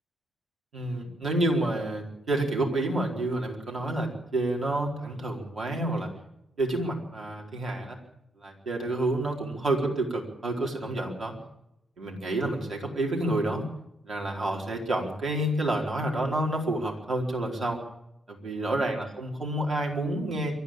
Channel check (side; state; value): both; normal; correlation 0.73